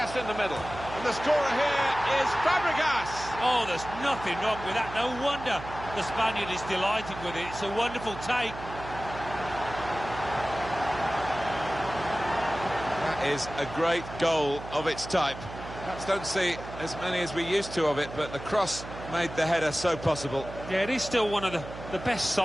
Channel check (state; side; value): noise; right; hum, 12 dB below the sound